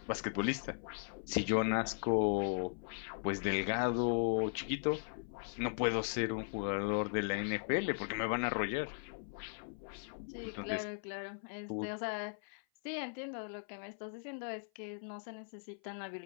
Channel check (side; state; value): right; silent; 52 dB below the other